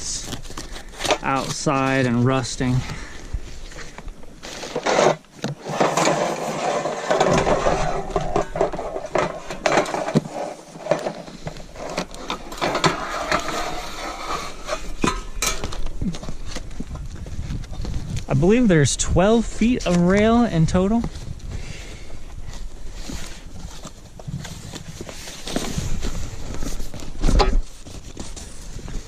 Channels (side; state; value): both; identical; correlation 1.00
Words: outside and rusting. I believe there's 12 feet of rail in total.